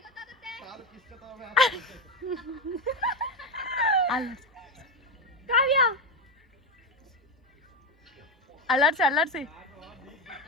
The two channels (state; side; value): normal; both; correlation 0.12